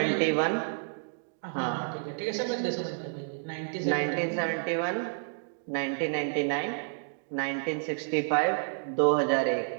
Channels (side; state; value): left; silent; digital silence